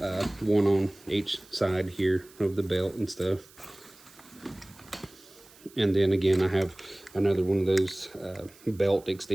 1 on each side here of the belt and stuff. And then again, I have another one of those belt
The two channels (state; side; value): noise; right; hiss, 25 dB below the sound